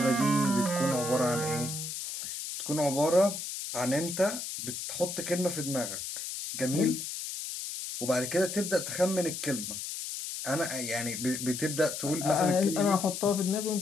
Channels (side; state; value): left; noise; hiss, 6 dB below the sound